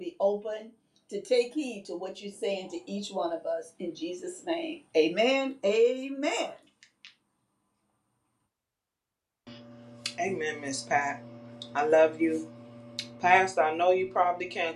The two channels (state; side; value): identical; both; correlation 1.00